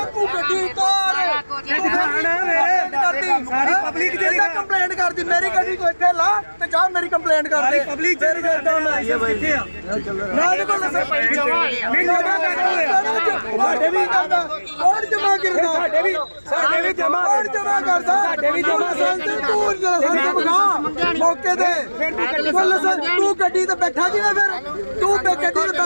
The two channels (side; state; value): both; inverted; correlation -1.00